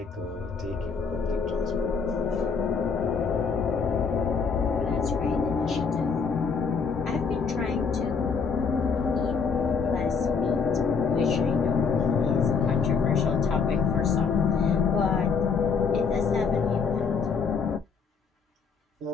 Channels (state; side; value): quieter; right; 5.5 dB